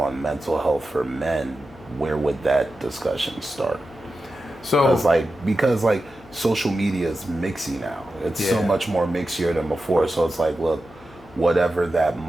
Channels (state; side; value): noise; right; hum, 30 dB below the sound